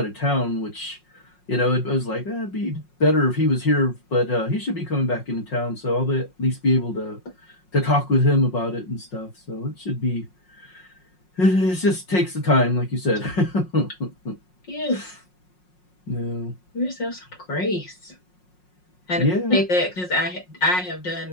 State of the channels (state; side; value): late; right; 5.5 ms